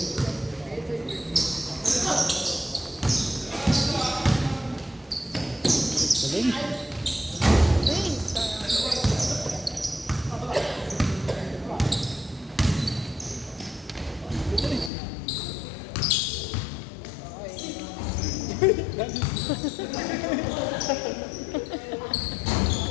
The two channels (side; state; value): right; drops out; at 14.9 s